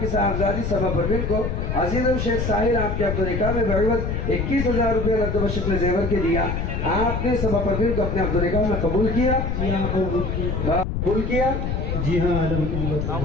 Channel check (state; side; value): noise; left; rumble, 2 dB below the sound